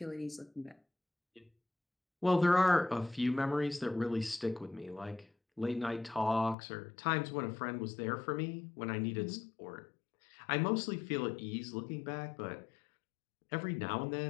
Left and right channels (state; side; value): drops out; right; at 6.6 s